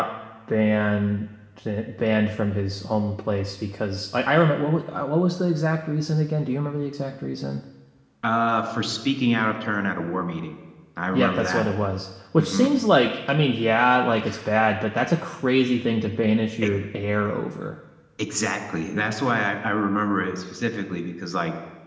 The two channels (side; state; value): both; identical; correlation 1.00